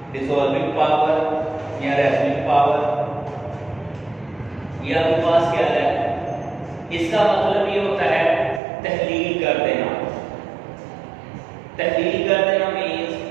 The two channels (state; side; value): drops out; left; at 8.6 s